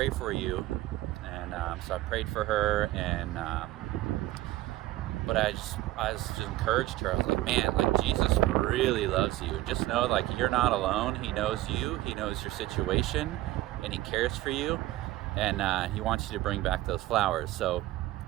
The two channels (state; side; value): quieter; left; 16.6 dB